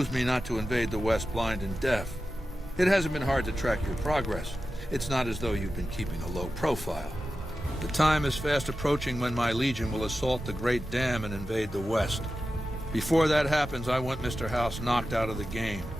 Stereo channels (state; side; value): normal; both; correlation 0.93